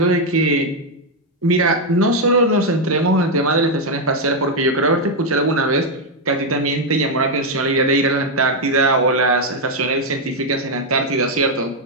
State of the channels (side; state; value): both; normal; correlation 0.01